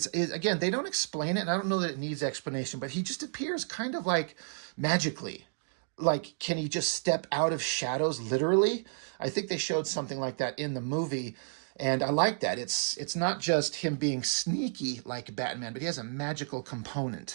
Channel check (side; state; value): left; silent; digital silence